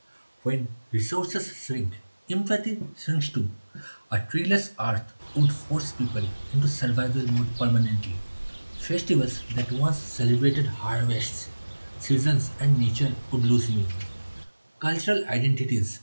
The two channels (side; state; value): both; inverted; correlation -1.00